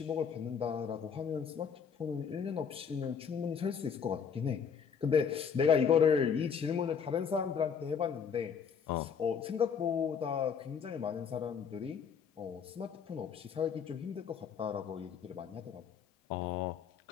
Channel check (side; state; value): right; quieter; 6.8 dB